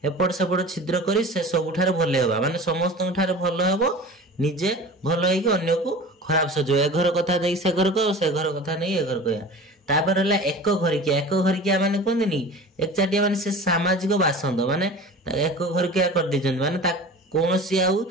एपट सेपट छिद्र करी से सबुठारे भले हबा माने समस्त ठारे भल हबो, निजे भल होइके अन्य को खराब सजो। ए घर कथा नहीं से घर कह, से घर कथा नहीं ए घर कह। तापर होला एक घरिकिया माने कहंदिनी एकचाटिया माने से सामाजिक बासंद माने एक घरिकिया कर दिजन माने ता कोनोसी आउ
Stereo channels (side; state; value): both; normal; correlation 0.37